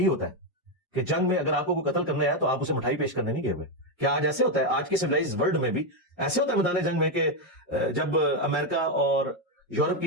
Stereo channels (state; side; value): normal; both; correlation 0.05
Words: ہوتا ہے کہ جنگ میں اگر آپ کو کوئی قتل کرنا ہے تو آپ اسے مٹھائی پیش کرنے نہیں گئے ہوئے. کیا آج ایسے ہوتا ہے؟ آج کے سویلائز ورلڈ میں بھی ایسے ہوتا ہے میدان جنگ میں کہ جب امریکہ اور یورپ